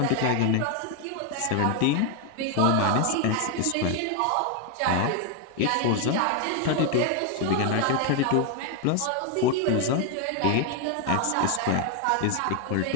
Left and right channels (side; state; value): both; different; correlation 0.01